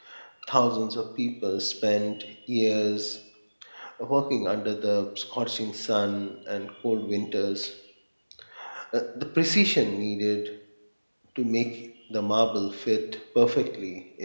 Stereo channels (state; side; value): inverted; both; correlation -1.00